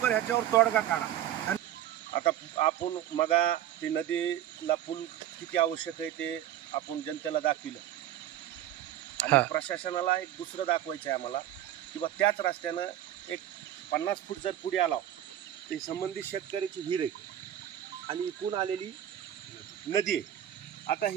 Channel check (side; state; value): left; quieter; 11.7 dB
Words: ह्याच्यावर तोडगा काढा। आता आपण मगा ती नदीला पूल किती आवश्यक आहे ते आपण जनतेला दाखविलं आणि प्रशासनाला एक दुसरं दाखवायचं आहे आम्हाला किंवा त्याच रस्त्यानं एक 50 फूट जर पुढे आला तर संबंधित शेतकऱ्याची विहीर आहे आणि इकून आलेली नदी आहे। आता